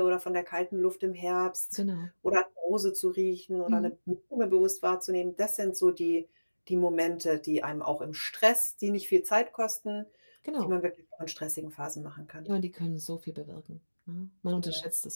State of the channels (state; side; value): inverted; both; correlation -1.00